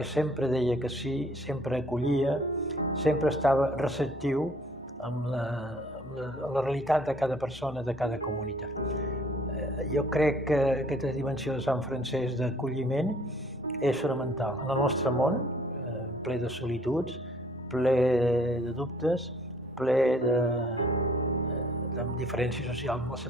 sempre deia que sí, sempre acollia, sempre estava receptiu amb la realitat de cada persona, de cada comunitat. Jo crec que aquesta dimensió de Sant Francesc d'acolliment és fonamental. En el nostre món, ple de solituds, ple de dubtes, ple de diferències socials molt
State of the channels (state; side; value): normal; both; correlation 0.59